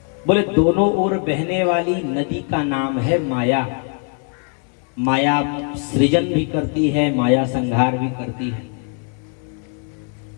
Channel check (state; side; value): quieter; right; 39.0 dB